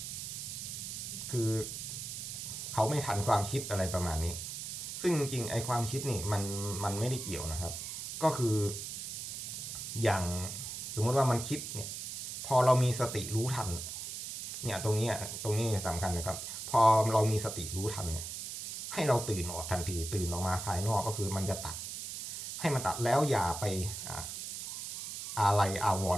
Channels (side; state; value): right; noise; hiss, 7 dB below the sound